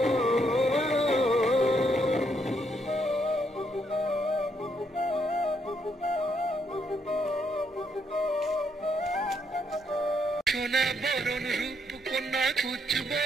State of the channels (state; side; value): normal; both; correlation 0.74